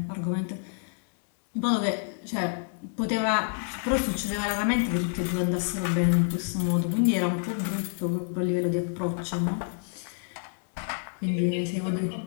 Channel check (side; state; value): right; silent; 56 dB below the other